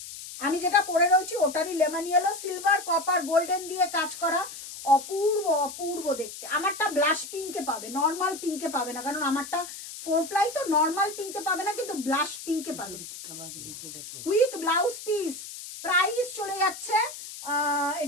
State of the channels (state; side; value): noise; left; hiss, 12 dB below the sound